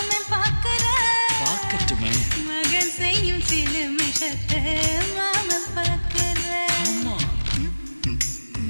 பார்க்கற பார்க்கட்டுமே. மகன் செய்யும் சில மிஷத்தை மாமன் பார்க்கற. ஆமா.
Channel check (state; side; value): inverted; both; correlation -1.00